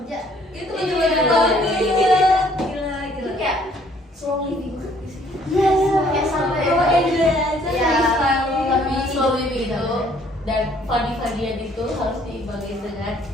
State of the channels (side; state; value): both; normal; correlation 0.61